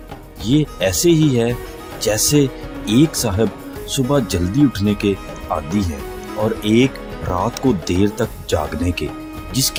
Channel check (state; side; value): identical; both; correlation 1.00